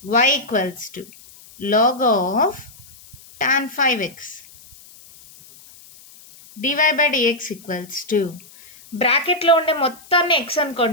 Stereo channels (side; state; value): left; noise; hiss, 23 dB below the sound